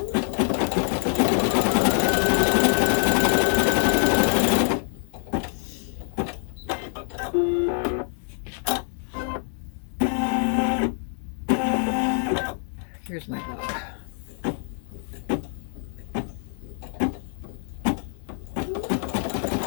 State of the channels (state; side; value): silent; right; 62 dB below the other